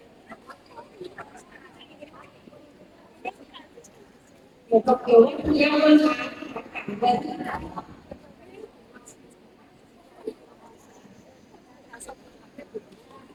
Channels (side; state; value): both; identical; correlation 1.00